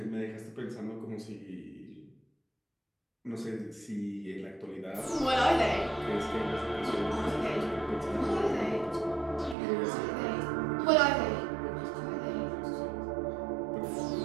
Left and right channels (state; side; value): drops out; left; at 9.6 s